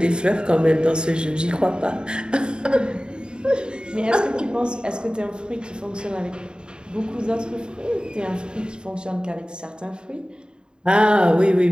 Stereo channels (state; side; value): late; left; 0.049 ms